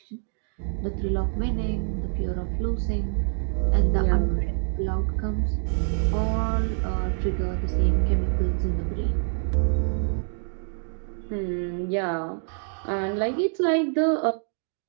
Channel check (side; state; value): left; silent; digital silence